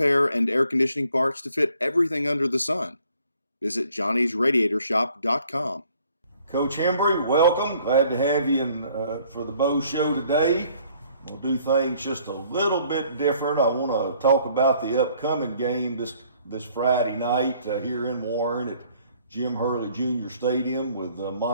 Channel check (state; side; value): inverted; both; correlation -0.61